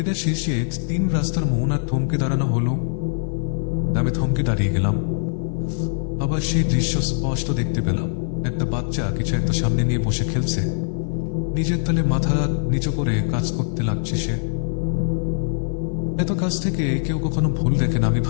শেষে 3 রাস্তার মোহনা থমকে দাঁড়ানো হলো। আমি থমকে দাঁড়িয়ে গেলাম। আবার সেই দৃশ্য স্পষ্ট দেখতে পেলাম। একটা বাচ্চা কিছু একটা সামনে নিয়ে বসে খেলছে। নিজের তলে মাথা নিচু করে কাজ করতে লাগছে সে। এত কাছ থেকে কেউ কখনো ভুল দেখে না, আমি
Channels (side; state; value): right; silent; 58 dB below the other